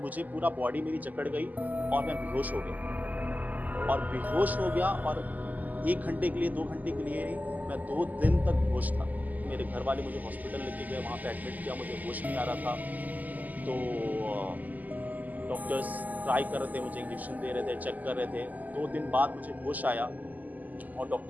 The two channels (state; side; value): late; left; 0.081 ms